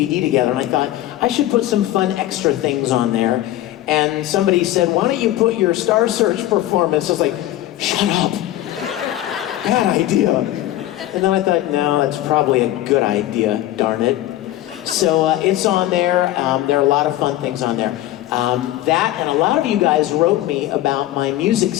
together and I thought, I should put some fun extra things on there. And somebody said, why don't you put your Star Search performance? I was like, shut up. Bad idea. And then I thought, no, that's probably a good idea, darn it. So it's on there. There are a lot of fun things on there. That and a lot of you guys wrote me about my music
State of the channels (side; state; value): right; quieter; 14.4 dB